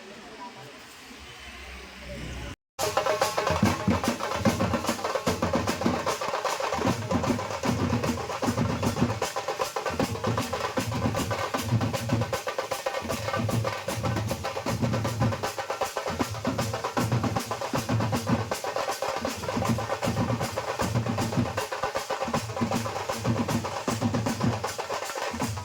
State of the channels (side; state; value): both; identical; correlation 1.00